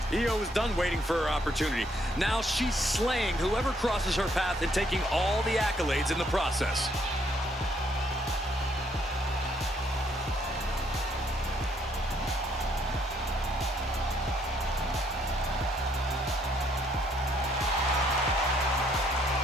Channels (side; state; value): both; normal; correlation 0.69